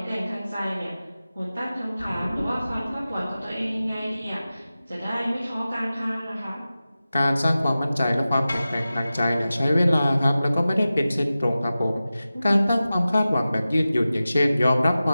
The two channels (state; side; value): inverted; both; correlation -0.95